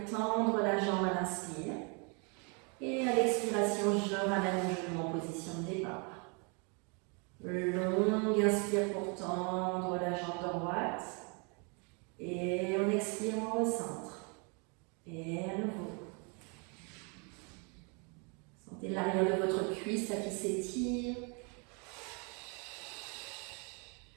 tendre la jambe à l'inspire. Et à l'expiration, je ramène mon genou en position de départ. pour tendre la jambe droite. Et on expire, on recentre. Et à nouveau. Sentez l'arrière de votre cuisse là qui s'étire.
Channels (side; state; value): left; quieter; 34.6 dB